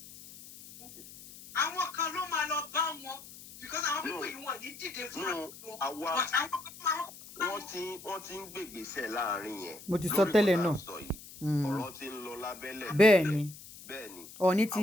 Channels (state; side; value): noise; left; hiss, 17 dB below the sound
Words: Àwọn kan ló máa lọ bá wọn because àwọn pípọ̀ yìí wọ́n ní dìde fún àwọn. Wọ́n ti ń gbègbèsẹ̀ láàrin yẹn. Mo ti sọ tẹ́lẹ̀ náà. Ọ̀rọ̀ ti ń lọ lábẹ́lẹ̀. Bẹ́ẹ̀ni.